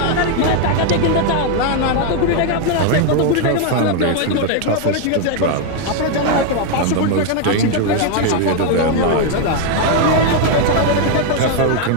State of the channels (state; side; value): different; both; correlation 0.01